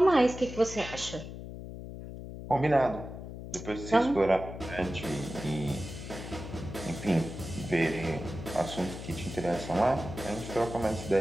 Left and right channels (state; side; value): noise; left; hum, 10 dB below the sound